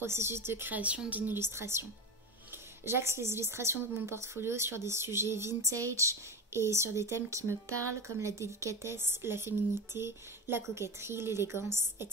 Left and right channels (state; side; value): normal; both; correlation 0.22